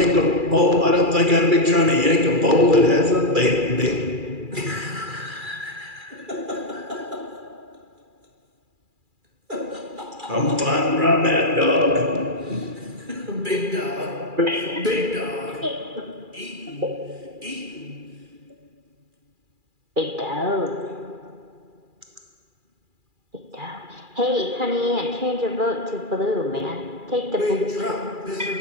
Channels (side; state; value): left; late; 2.4 ms